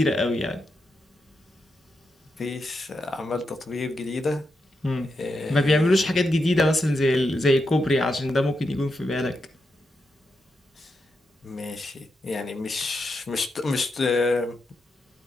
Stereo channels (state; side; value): normal; both; correlation 0.85